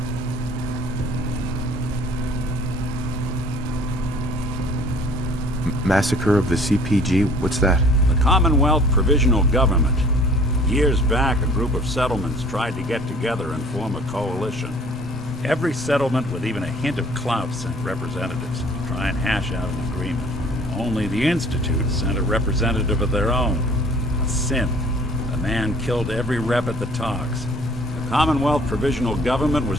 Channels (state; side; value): normal; both; correlation 0.53